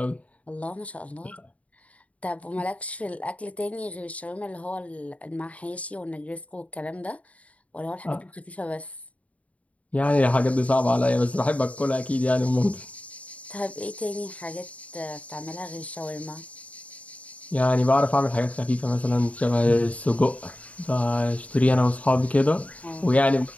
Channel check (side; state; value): right; late; 0.067 ms